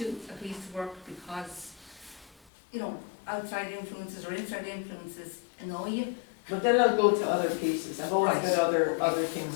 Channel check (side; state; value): right; drops out; at 2.4 s